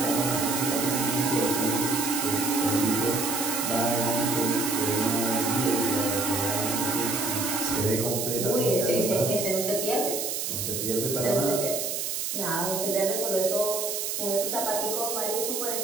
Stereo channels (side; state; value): right; noise; hiss, 2 dB below the sound